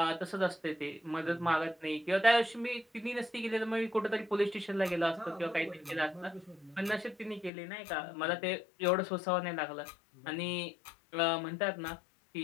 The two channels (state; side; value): drops out; right; at 7.5 s